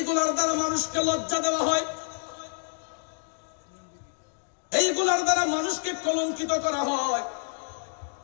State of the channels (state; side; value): silent; right; digital silence